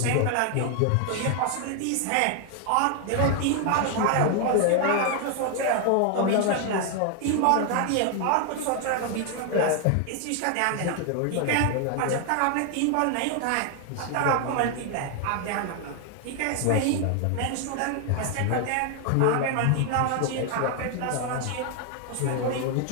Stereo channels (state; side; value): different; both; correlation 0.00